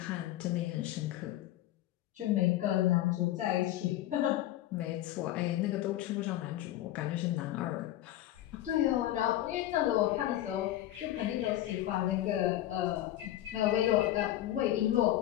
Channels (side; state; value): right; quieter; 14.0 dB